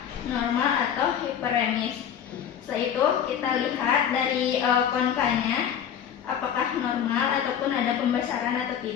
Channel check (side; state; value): right; quieter; 8.9 dB